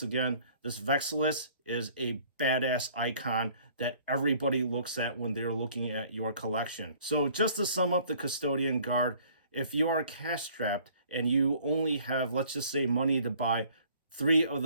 again, this Vexilus is a badass icon that everybody looks at when they're looking at your collection. So just to sum up the Custodian Guard, if you are cash strapped and you only have, let's just say, money to buy 3 of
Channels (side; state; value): both; inverted; correlation -0.56